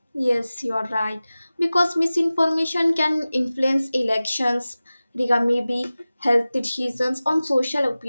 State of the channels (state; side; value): inverted; both; correlation -0.97